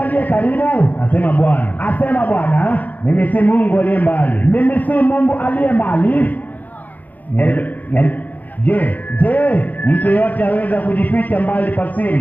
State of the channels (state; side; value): late; right; 0.081 ms